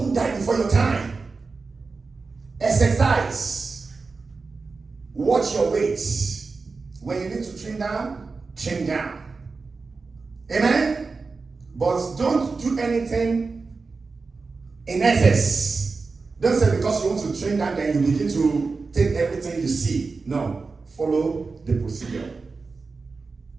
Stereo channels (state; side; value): quieter; left; 4.2 dB